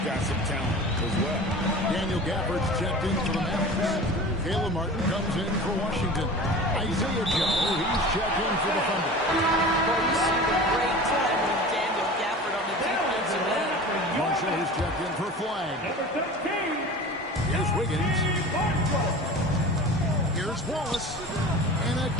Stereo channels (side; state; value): both; normal; correlation 0.36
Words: got some talent as well. Daniel Gafford's checked in for the Mavericks. Caleb Martin comes in for Washington. Isaiah Joe, he's checked in for the Thunder. Well, you see the great time with Daniel Gafford on the defensive end. Marshall is checked in for Flagg. Here's Wiggins. Here's Wallace. And